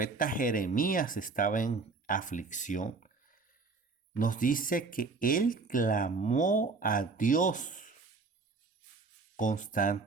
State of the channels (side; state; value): left; quieter; 4.2 dB